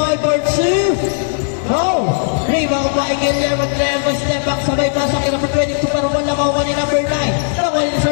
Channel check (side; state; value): right; silent; digital silence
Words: for 2. No. Rebound by Guillermo. Step back. Sabay pasok kay number 22. Pero wala makuha ni number 9. Nakuha ni